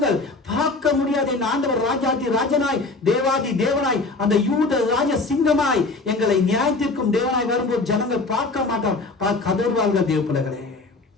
பார்க்க முடியாது என் ஆண்டவர் ராஜாதி ராஜனாய் தேவாதி தேவனாய் அந்த யூத ராஜ சிங்கமாய் எங்களை நியாயத்திற்கும் தேவனாய் வரும்போது ஜனங்கள் பார்க்க மாட்டார், கதறுவார்கள் தேவ பிள்ளைகளே.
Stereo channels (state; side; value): quieter; right; 3.5 dB